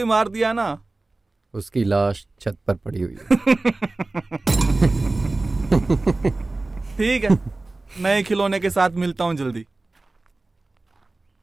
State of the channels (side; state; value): left; quieter; 3.1 dB